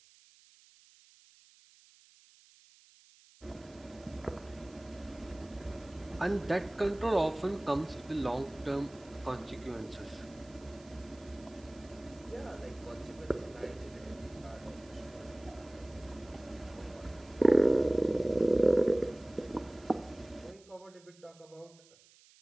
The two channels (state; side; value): noise; right; hiss, 26 dB below the sound